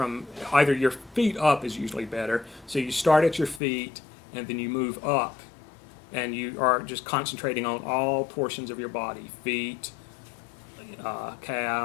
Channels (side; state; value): right; drops out; at 3.6 s